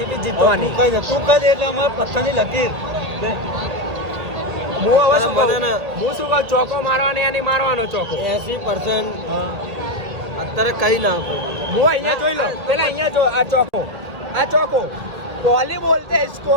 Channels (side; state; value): left; late; 2.0 ms